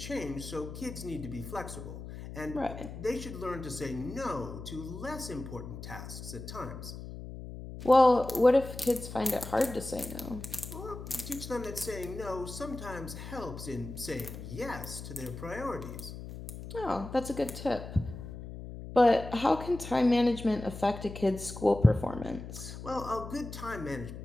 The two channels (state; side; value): noise; left; hum, 10 dB below the sound